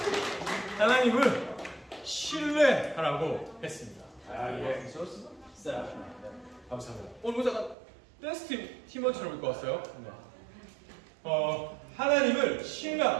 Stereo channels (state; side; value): drops out; left; at 7.8 s